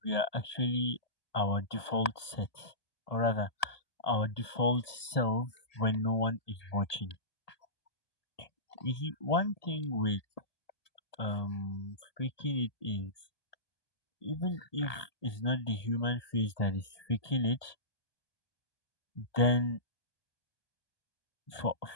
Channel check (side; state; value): right; late; 1.8 ms